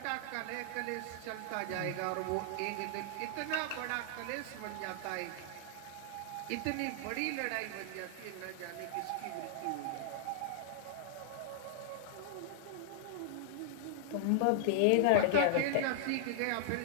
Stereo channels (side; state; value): both; different; correlation -0.01